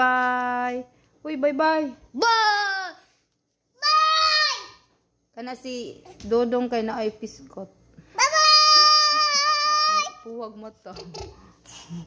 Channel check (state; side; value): identical; both; correlation 1.00